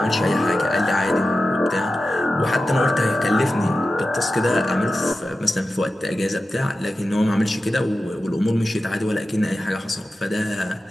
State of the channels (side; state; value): both; normal; correlation 0.93